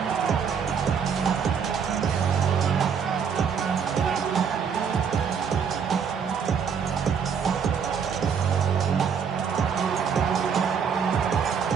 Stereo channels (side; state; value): left; quieter; 6.8 dB